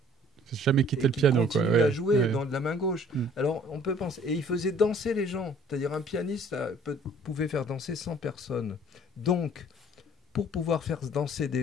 Faut jamais quitter le piano, quoi. À jouer dans de la main gauche. Alors, on peut penser... Et ils faisaient danser les gens. C'est-à-dire, un pianiste pouvait faire danser 100 personnes. Donc, pour pouvoir faire danser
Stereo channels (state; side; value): normal; both; correlation 0.55